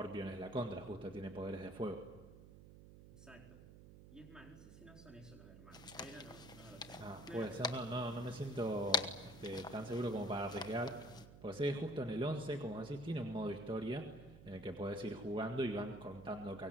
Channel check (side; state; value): right; noise; hum, 16 dB below the sound